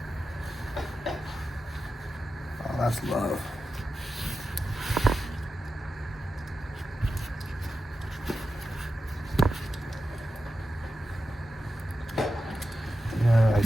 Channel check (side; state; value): both; normal; correlation 0.90